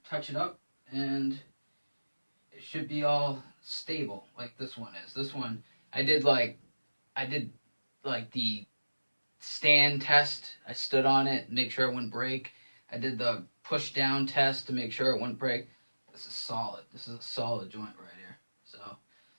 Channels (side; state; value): both; inverted; correlation -1.00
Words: touch it up and it should be all stable like this one is. This one, I did like the stand test. I stood on it, make sure it wouldn't break. I did the push down test to make sure it wouldn't break. This is solid. This is a solid joint right here. So,